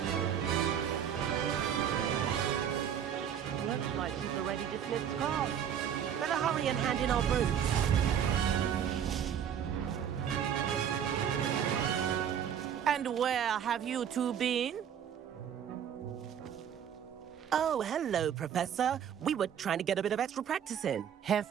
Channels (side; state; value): left; quieter; 8.9 dB